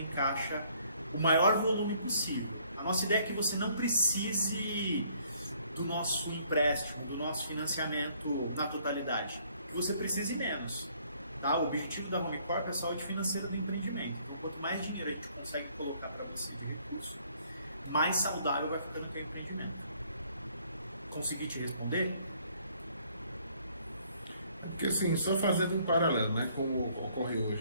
caixa o maior volume possível. A nossa ideia é que você não precise do nosso empréstimo, do nosso financiamento na totalidade, que você precise menos. Tá? O objetivo da HomeCorp é a saúde financeira do empreendimento. Então, quanto mais dinheiro a gente consegue colocar para você de recurso, mais saudável vai ficando o teu empreendimento. Consegui te responder? Porque assim, só fazendo um paralelo, né, como ocorre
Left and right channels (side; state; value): both; inverted; correlation -0.63